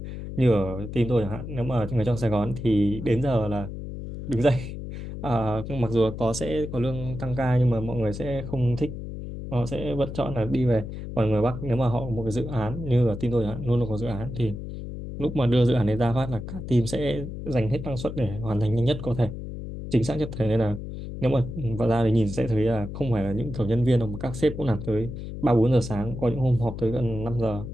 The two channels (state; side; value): noise; left; hum, 8 dB below the sound